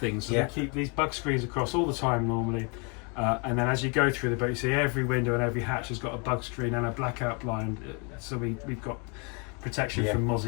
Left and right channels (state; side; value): quieter; right; 34.0 dB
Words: So we keep these bug screens across all the time normally. And then as you go through the boat, you see every window and every hatch has got a bug screen and a blackout blind. So we've got protection from